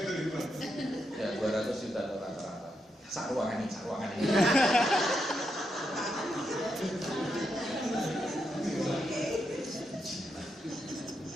Ya 200 juta rata-rata. Sak ruangan ini.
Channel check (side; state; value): both; normal; correlation 0.82